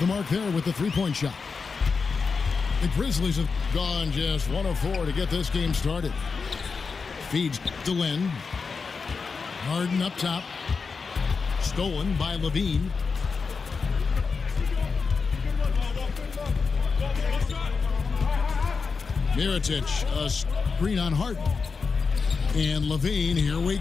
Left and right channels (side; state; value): right; quieter; 5.0 dB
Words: mark there with the three-point shot. The Grizzlies have gone just 1 of 4 to get this game started. Feeds to Lynn. Harden up top. Stolen by LaVine. Mirotic, a screen on Harden. And LaVine, here we